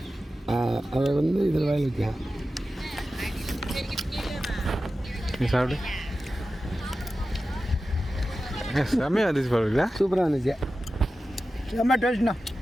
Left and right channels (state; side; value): normal; both; correlation 0.94